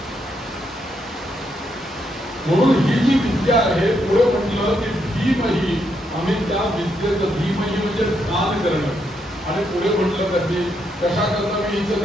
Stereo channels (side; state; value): both; normal; correlation 0.78